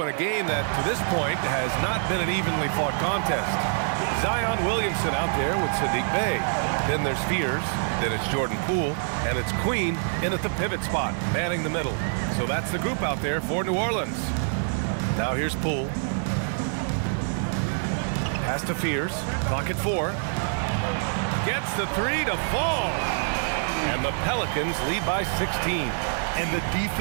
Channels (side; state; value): left; silent; digital silence